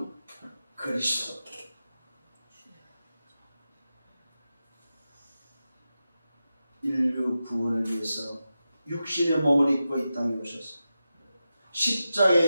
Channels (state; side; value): inverted; both; correlation -0.91